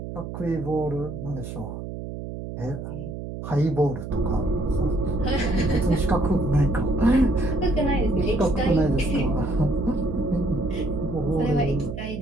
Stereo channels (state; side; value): noise; right; hum, 8 dB below the sound